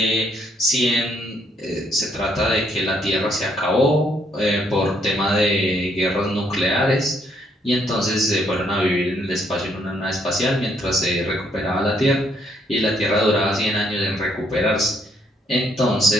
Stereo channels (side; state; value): both; normal; correlation 0.70